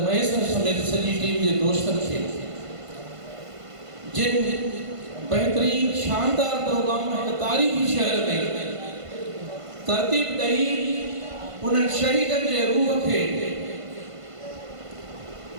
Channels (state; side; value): late; left; 1.5 ms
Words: मयसर समेत सॼी टीम जे दोस्तनि खे जिन बेहतरीन शानदार प्रोग्राम हिकु तारीख़ी शहर में तरतीब ॾेई उन्हनि शहीदनि जे रूह खे